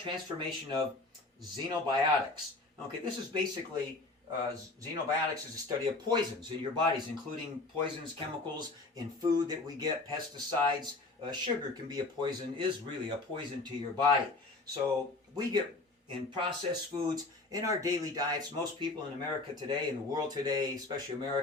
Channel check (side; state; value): right; quieter; 3.3 dB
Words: of xenobiotics. Okay, this is basically, xenobiotics is a study of poisons in your bodies, including poisons, chemicals in food that we get, pesticides. Sugar can be a poison, is really a poison to your body. So we get in processed foods, in our daily diets. Most people in America today, in the world today, especially